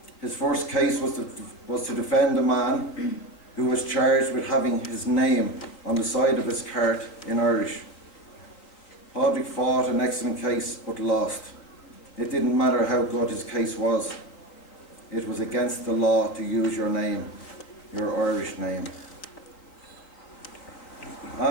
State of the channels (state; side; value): late; right; 4.0 ms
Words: His first case was to defend a man who was charged with having his name on the side of his cart in Irish. Padraig fought an excellent case but lost. It didn't matter how good his case was. It was against the law to use your name, your Irish name.